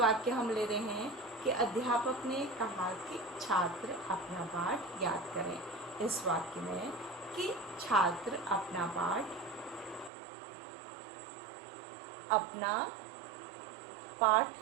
हम ले रहे हैं कि अध्यापक ने कहा कि छात्र अपना पाठ याद करें। इस वाक्य में कि छात्र अपना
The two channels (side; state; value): left; drops out; at 10.1 s